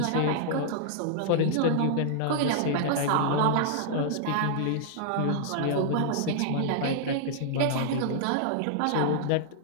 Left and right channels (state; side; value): different; both; correlation -0.01